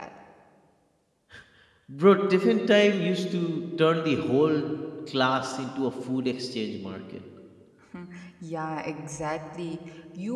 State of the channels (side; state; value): both; identical; correlation 1.00